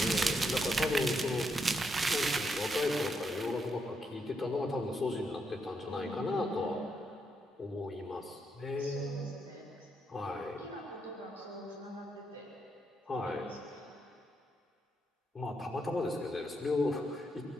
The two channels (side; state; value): both; normal; correlation 0.79